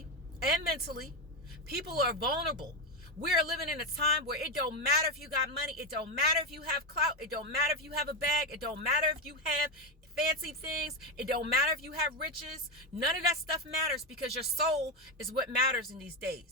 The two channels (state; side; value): normal; both; correlation 0.11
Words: and mentally. People are vulnerable. We're living in a time where it don't matter if you got money. It don't matter if you have clout. It don't matter if you have a bag. It don't matter if you have fancy things. It don't matter if you have riches. None of that stuff matters, because your soul is what matters in these